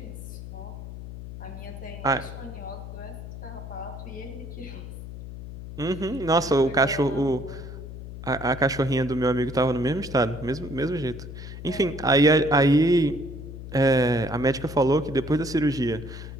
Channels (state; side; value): noise; left; hum, 11 dB below the sound